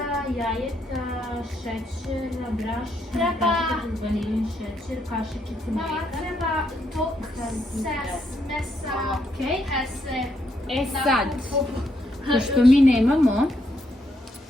jajeta, šećera, brašna, Treba. vanilin šećer, kašičica Mama, mlijeka. treba to mesa Okej. hese E sad, pošto mi nemamo,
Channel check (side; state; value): both; normal; correlation 0.76